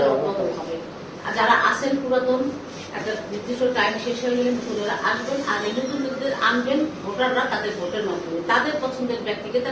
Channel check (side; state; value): both; identical; correlation 1.00